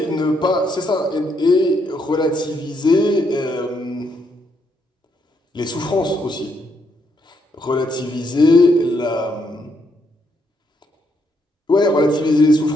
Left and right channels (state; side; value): normal; both; correlation 0.75